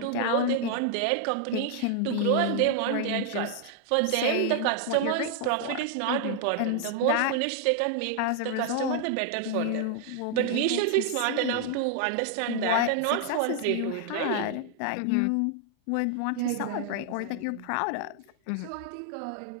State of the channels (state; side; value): different; both; correlation 0.00